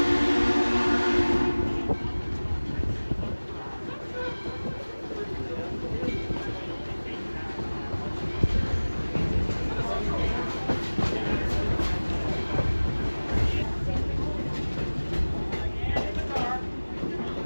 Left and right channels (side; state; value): both; inverted; correlation -1.00